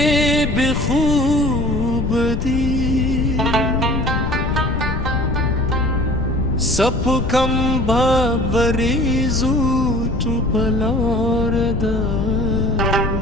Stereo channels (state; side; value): noise; left; rumble, 1 dB below the sound